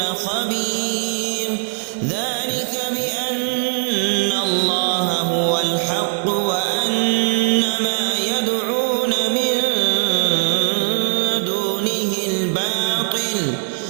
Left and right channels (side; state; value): left; silent; digital silence